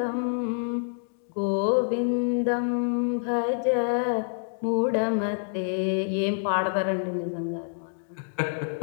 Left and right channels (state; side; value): silent; right; digital silence